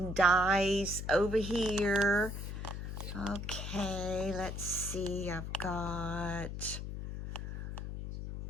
dies over here. Okay, let's see. I've got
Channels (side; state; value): left; noise; hum, 6 dB below the sound